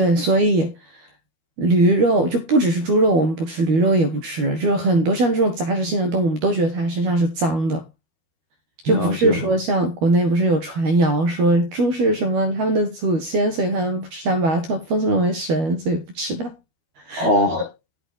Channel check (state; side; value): late; left; 12 ms